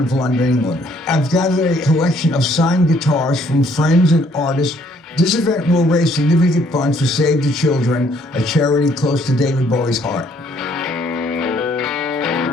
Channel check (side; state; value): both; normal; correlation 0.65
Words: of London, England. I've gathered a collection of signed guitars from friends and artists. This event will raise significant funds for Save the Children, a charity close to David Bowie's heart.